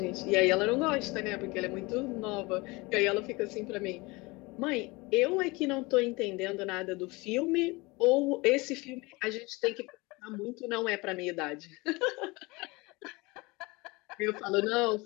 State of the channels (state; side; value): quieter; right; 24.2 dB